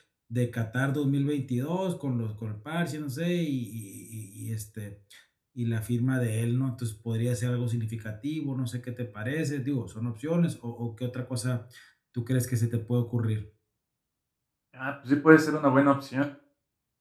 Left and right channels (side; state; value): both; identical; correlation 1.00